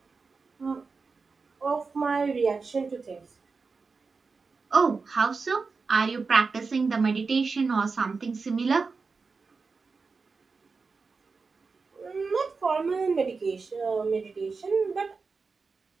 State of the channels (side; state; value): left; quieter; 4.6 dB